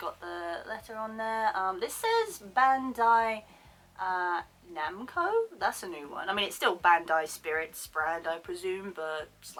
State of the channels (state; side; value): identical; both; correlation 1.00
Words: the letter on there. This says Bandai Namco, that's a new one. I mean, it's still Bandai Spirits brand, I presume, but